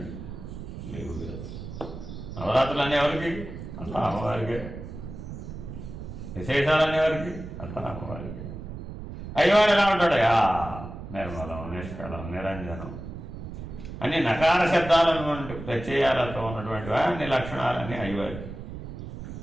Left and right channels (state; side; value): noise; right; rumble, 10 dB below the sound